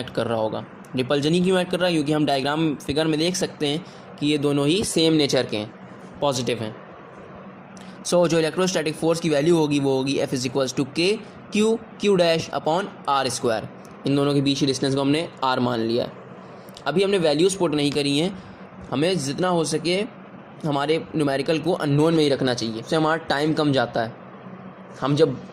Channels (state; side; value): identical; both; correlation 1.00